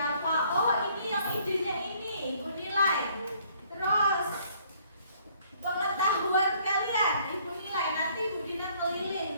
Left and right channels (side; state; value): both; inverted; correlation -0.63